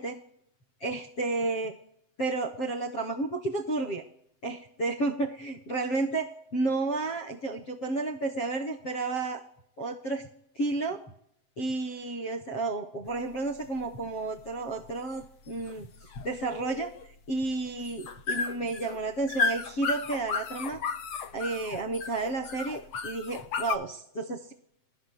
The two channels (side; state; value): right; late; 7.7 ms